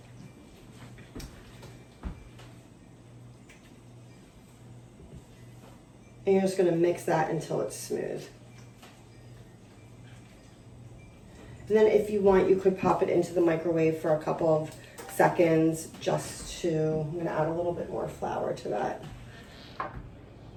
And you're just gonna mix that until it's smooth. And then if you want, you could pop it into the microwave for a couple of seconds just to, I'm gonna add a little bit more flour to that.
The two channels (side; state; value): both; identical; correlation 1.00